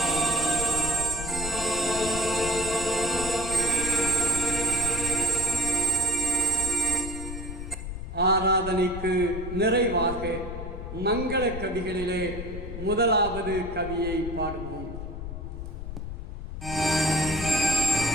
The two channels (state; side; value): noise; left; rumble, 8 dB below the sound